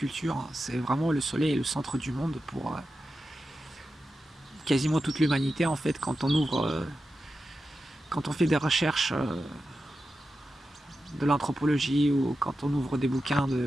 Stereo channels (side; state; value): both; normal; correlation 0.91